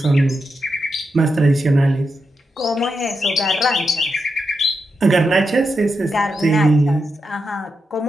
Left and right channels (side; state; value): both; normal; correlation 0.86